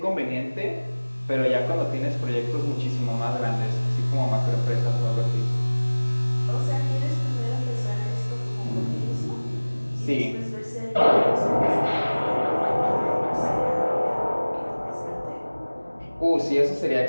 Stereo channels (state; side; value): inverted; both; correlation -1.00